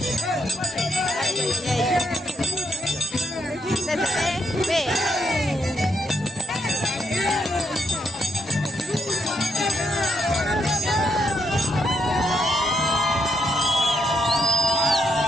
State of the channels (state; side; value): normal; both; correlation 0.77